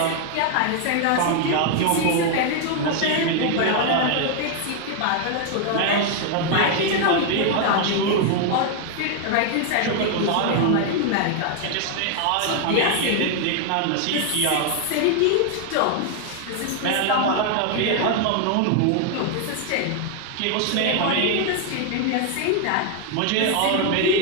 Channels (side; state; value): both; different; correlation 0.00